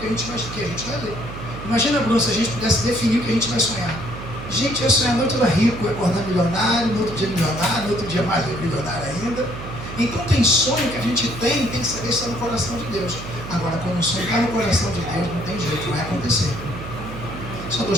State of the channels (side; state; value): right; noise; hum, 11 dB below the sound